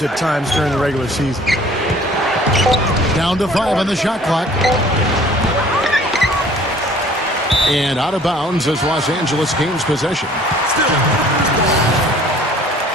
at times during the regular season. Down to 5 on the shot clock. And out of bounds as Los Angeles gains possession.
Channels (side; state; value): both; normal; correlation 0.53